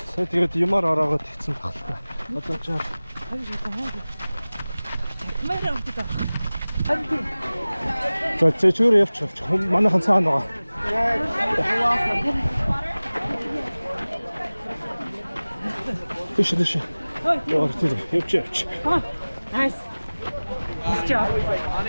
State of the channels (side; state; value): both; inverted; correlation -0.99